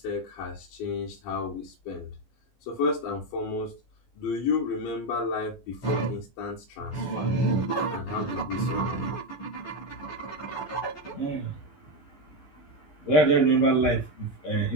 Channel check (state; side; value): late; right; 13 ms